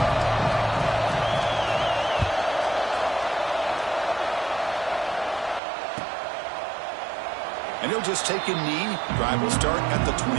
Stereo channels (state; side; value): drops out; left; at 5.6 s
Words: And he'll just take a knee. Drive will start at the